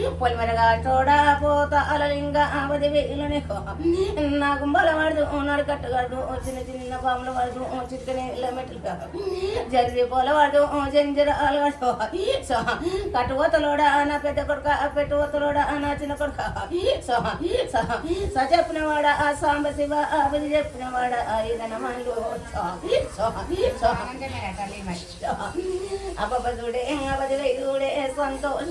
పొలిమరగా చోడా పోత అలలింగ 10,000 నీకో నా గుంబల వాడదు నాడు కట్టగలదు చిన్న చిన్న బాముల వాడదు చిక్కని మెట్లు జరిగి పోల వాడదు జంజర అలవాడు కట్టుకోతలోడా నా పెద్ద కొడుక పెట్టుకోతలోడా నా చిన్న కొడుక చెప్పినవాడ ఆ సాంబ శివ ఆపది చెప్పినవాడ ఈదనమాలు అపపదుడే అవదివైదుడే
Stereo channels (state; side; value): identical; both; correlation 1.00